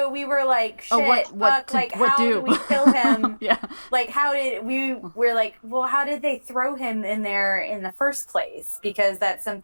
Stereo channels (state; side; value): inverted; both; correlation -1.00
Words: we were like, shit, what how do we kill him? Yeah. Like, we're like, well, how did they throw him in there in the first place? Because that's